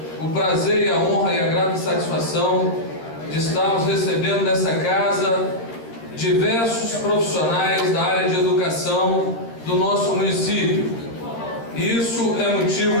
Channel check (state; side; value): late; right; 13 ms